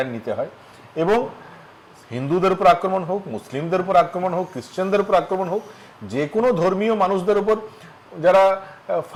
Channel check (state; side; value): identical; both; correlation 1.00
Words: নিতে হয়, এবং হিন্দুদের উপর আক্রমণ হোক, মুসলিমদের উপর আক্রমণ হোক, খ্রিশ্চানদের উপর আক্রমণ হোক, যে কোনো ধর্মীয় মানুষদের উপর যারা